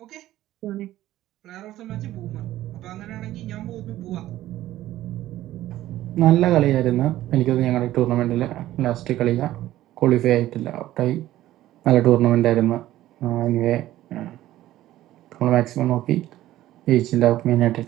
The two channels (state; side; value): quieter; left; 14.5 dB